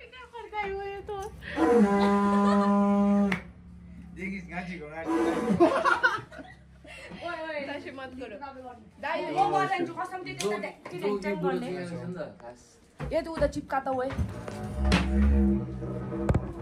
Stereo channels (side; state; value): both; identical; correlation 1.00